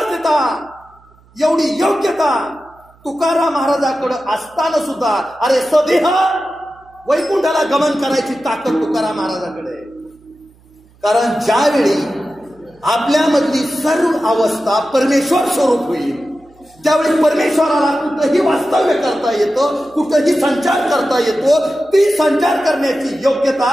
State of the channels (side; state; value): right; noise; hum, 30 dB below the sound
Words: एवढी योग्यता तुकाराम महाराजाकडे असताना सुद्धा अरे स्वदेह वैकुंठाला गमन करायची ताकद तुकाराम महाराजाकडे. कारण ज्यावेळी आपल्यामधली सर्व अवस्था परमेश्वर स्वरूप होईल त्यावेळी परमेश्वराला कुठंही वास्तव्य करता येतं, कुठंही संचार करता येतो. ती संचार करण्याची योग्यता